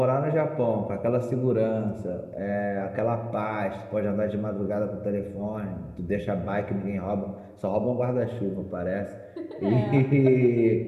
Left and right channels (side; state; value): both; identical; correlation 1.00